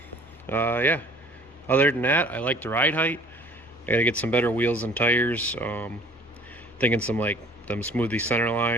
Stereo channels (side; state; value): both; normal; correlation 0.51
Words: Yeah, other than that, I like the ride height. I gotta get some better wheels and tires. Thinking some like them smoothie center